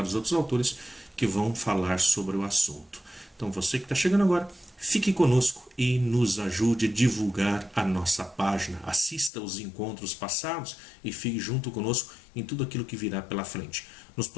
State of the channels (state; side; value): drops out; right; at 9.3 s